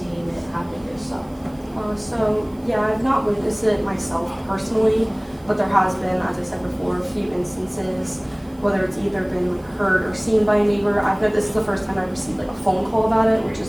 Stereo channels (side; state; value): right; noise; hiss, 29 dB below the sound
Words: it happen yourself? Yeah, I've not witnessed it myself personally, but there has been, as I said before, a few instances, whether it's either been like heard or seen by a neighbor. This is the first time I've received like a phone call about it, which